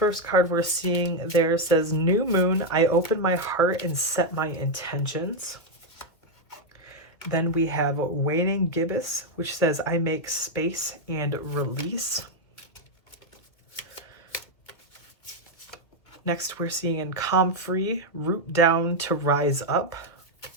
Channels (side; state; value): right; late; 2.1 ms